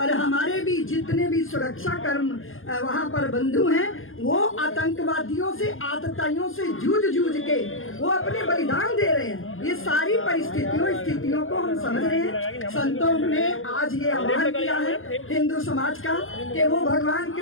हमारे भी जितने भी सुरक्षा कर्म वहां पर बंधु हैं वो आतंकवादियों से, आतताइयों से जूझ के वो अपने बलिदान दे रहे हैं। ये सारी स्थितियों को हम समझ रहे हैं। संतों ने आज ये आह्वान किया है हिंदू समाज का कि वो भगवान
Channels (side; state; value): right; late; 0.60 ms